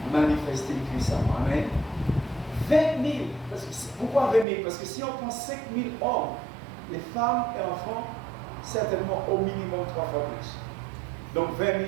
manifestée puissamment. Amen. 20 000. Pourquoi 20 000? Parce que si on prend 5 000 hommes, les femmes et enfants, certainement au minimum 3 fois plus. Donc 20 000,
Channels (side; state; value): left; drops out; at 4.5 s